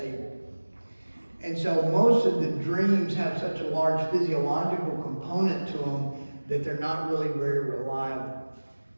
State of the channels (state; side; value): inverted; both; correlation -1.00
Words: And so most of the dreams have such a large physiological component to them that they're not really very reliable.